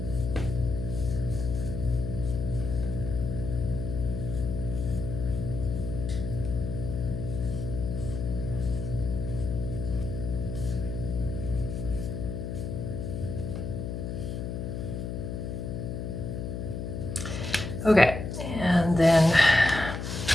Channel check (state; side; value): noise; left; hum, 4 dB below the sound